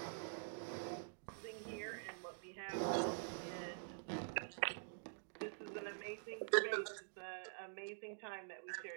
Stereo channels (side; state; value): left; silent; digital silence